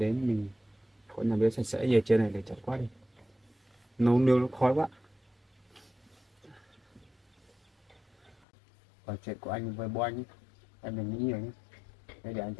mình có nhà bếp sạch sẽ. Về trên này để chặt quá đi, nấu nướng nó khói quá. Còn chuyện của anh với bố anh ấy, em đừng nghĩ nhiều nhé, để anh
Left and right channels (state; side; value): drops out; right; at 8.3 s